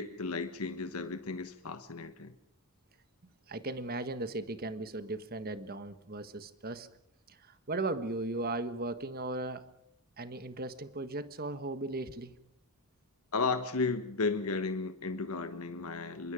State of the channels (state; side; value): normal; both; correlation 0.05